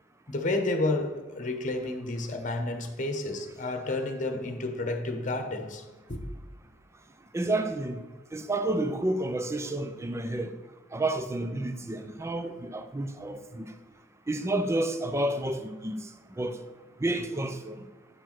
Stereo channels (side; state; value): both; normal; correlation 0.58